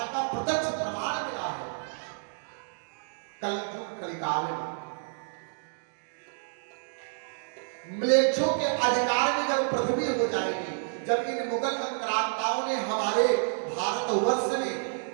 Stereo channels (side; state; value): left; silent; digital silence